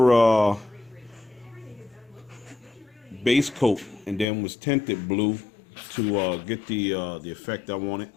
base coat, and then was tinted blue to get the effect I wanted.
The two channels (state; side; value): drops out; right; at 4.2 s